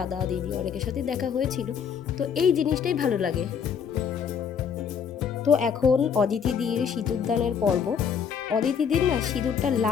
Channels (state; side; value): quieter; right; 7.2 dB